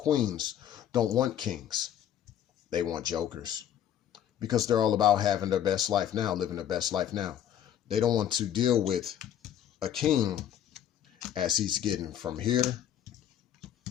don't want kings. They want jokers because they're all about having their best life now, living their best life now. They don't want to deal with a king as he's getting from here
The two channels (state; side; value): quieter; right; 10.3 dB